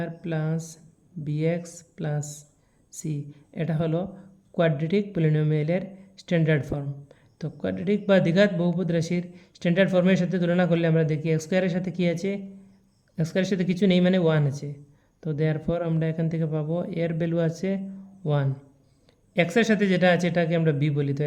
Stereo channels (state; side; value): identical; both; correlation 1.00